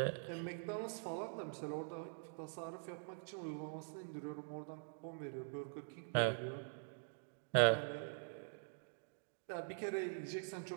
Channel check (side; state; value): left; silent; digital silence